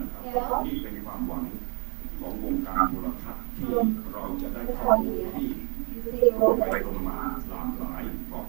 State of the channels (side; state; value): left; quieter; 37.4 dB